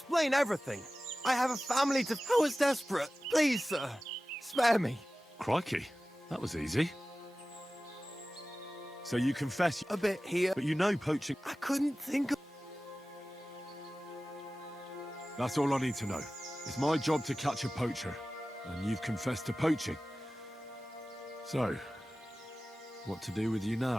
everything. I have a family to... I was desperate. Please, sir. Spare me. Crikey, that was easy. So you confess, A bit here. but you know poaching. I couldn't think of... That's all I need to know. It's my job to catch a poacher, and you've confessed to poaching. So, what to do with you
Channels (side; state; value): both; normal; correlation 0.96